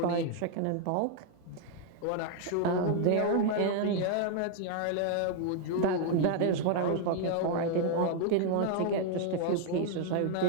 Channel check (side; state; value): both; different; correlation 0.00